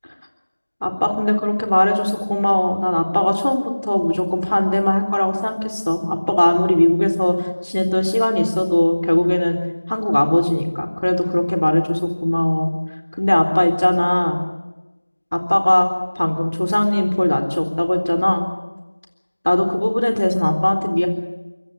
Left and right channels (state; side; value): inverted; both; correlation -1.00